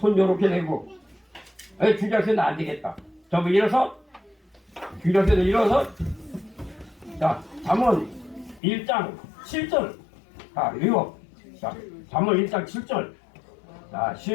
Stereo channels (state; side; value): drops out; right; at 8.6 s